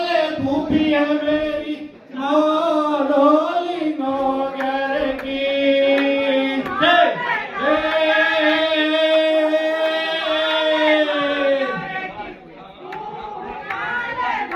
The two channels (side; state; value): both; identical; correlation 1.00